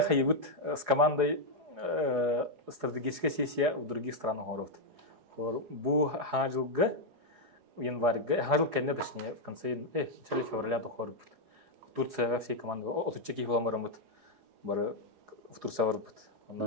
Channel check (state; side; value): late; left; 4.8 ms